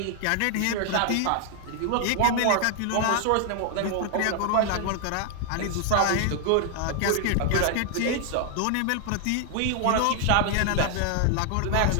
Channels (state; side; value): different; both; correlation 0.00